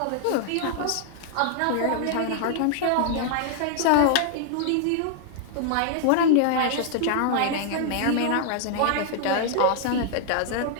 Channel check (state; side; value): different; both; correlation -0.01